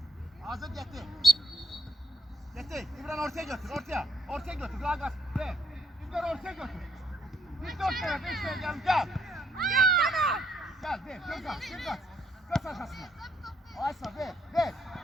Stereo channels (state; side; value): normal; both; correlation 0.69